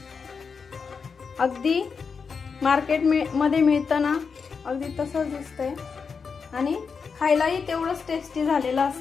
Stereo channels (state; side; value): quieter; right; 5.6 dB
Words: अगदी मार्केट मध्ये मिळतं ना अगदी तसंच दिसतंय आणि खायलाही तेवढंच टेस्टी झालेलं